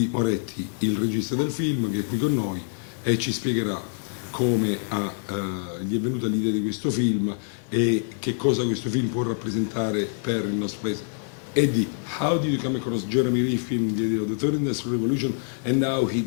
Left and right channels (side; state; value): right; silent; digital silence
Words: Moretti, il regista del film, che è qui con noi e ci spiegherà come gli è venuta l'idea di questo film e che cosa questo film può rappresentare per il nostro paese. Eddy, how did you come across Jeremy Lee film the idea of the third industrial revolution and how he